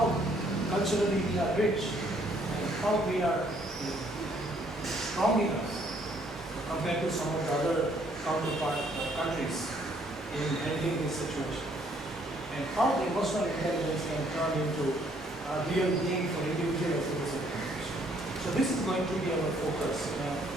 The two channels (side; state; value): both; normal; correlation 0.66